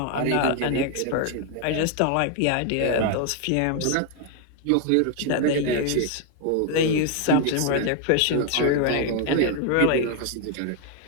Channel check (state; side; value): different; both; correlation 0.00